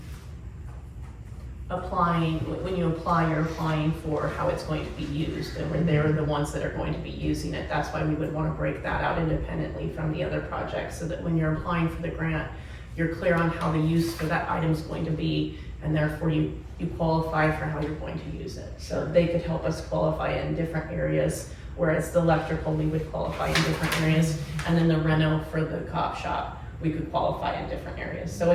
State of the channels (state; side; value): identical; both; correlation 1.00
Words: when you apply, you're applying for how it's going to be used, and they're the ones that are going to be using it. That's why we would wanna break that out independently from the other projects, so that when you're applying for the grant, you're clear on how the use for that item's going to be, and therefore you qualify for how you're going to use it. So they could help us qualify in different areas, whereas the electrical, we would qualify in different areas, and then the reno for the cop shop, we could qualify in different areas. So